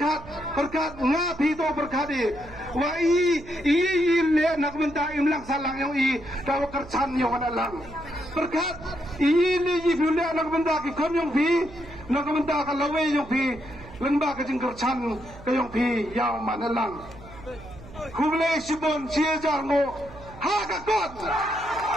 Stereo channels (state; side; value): noise; right; hum, 18 dB below the sound